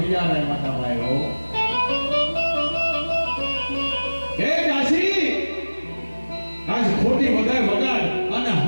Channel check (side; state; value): both; inverted; correlation -1.00